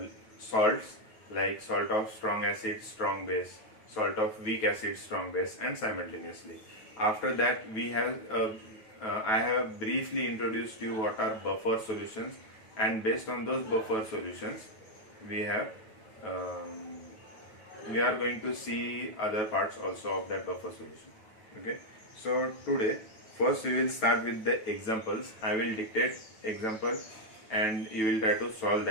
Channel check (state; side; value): late; right; 9.2 ms